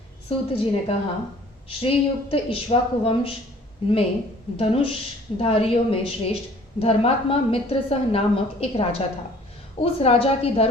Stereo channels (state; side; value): normal; both; correlation 0.53